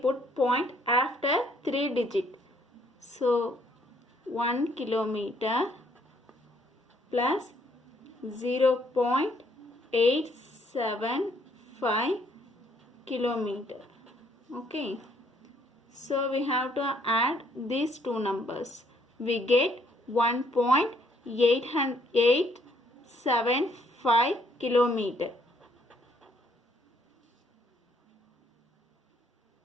point after 3 digit. So 1 kilometer plus 0.875 kilometer. Okay, so we have to add these two numbers. We get 1.875 kilometer.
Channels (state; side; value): normal; both; correlation 0.67